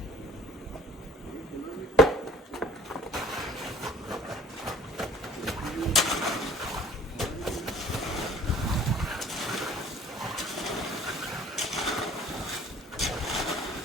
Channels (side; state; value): both; normal; correlation 0.51